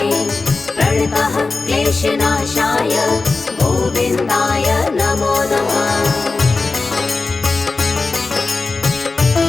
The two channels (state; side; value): quieter; right; 3.8 dB